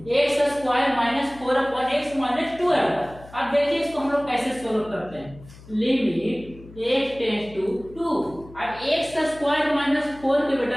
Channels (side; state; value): left; noise; hum, 20 dB below the sound